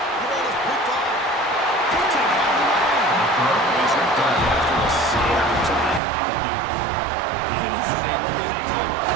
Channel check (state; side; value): drops out; left; at 6.0 s